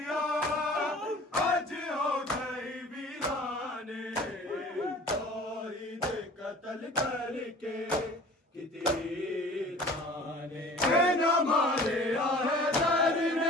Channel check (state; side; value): normal; both; correlation 0.46